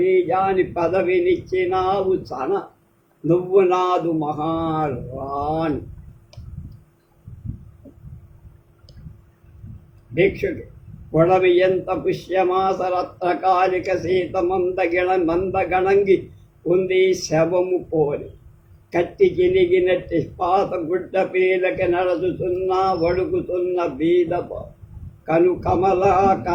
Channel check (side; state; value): both; identical; correlation 1.00